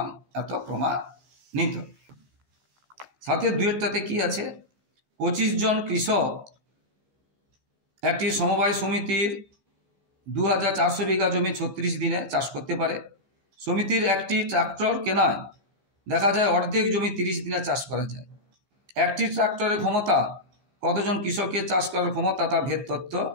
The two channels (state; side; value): late; left; 14 ms